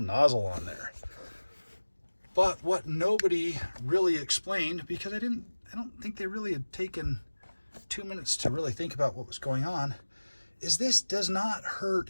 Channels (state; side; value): inverted; both; correlation -1.00